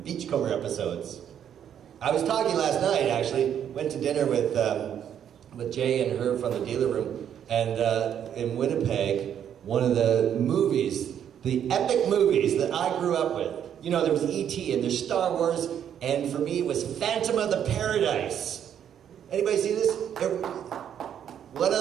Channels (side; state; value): left; quieter; 9.3 dB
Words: Beachcomber episodes. I was talking last night, actually. Went to dinner with Jay and her from the dealer room, and in Winnipeg, one of the movies, the epic movies that I grew up with. There was E.T. and there's Star Wars, and for me it was Phantom of the Paradise. Anybody see this? One